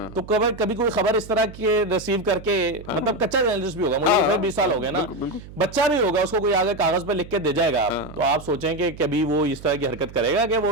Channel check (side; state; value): right; noise; hum, 16 dB below the sound